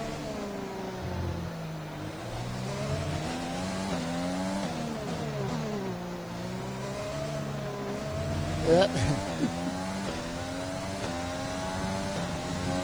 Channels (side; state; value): left; noise; hiss, 25 dB below the sound